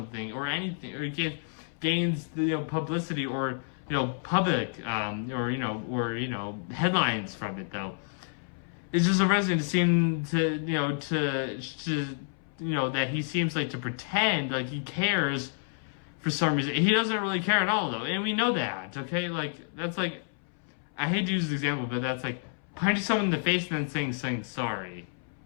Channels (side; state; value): right; silent; 58 dB below the other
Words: or anything, or he gains, you know, publicity, or, you know, public, or headlines from it, though. It's just arresting to seem to, that he seems like to pretend like he cares for some reason. He doesn't really care at all, though, and we know that, okay? Like, that's like, I hate to use this example, but that's like punching someone in the face and then saying sorry.